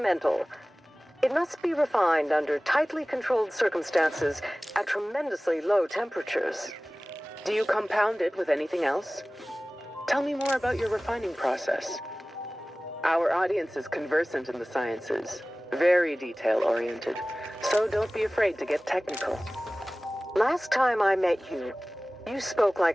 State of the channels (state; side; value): normal; both; correlation 0.98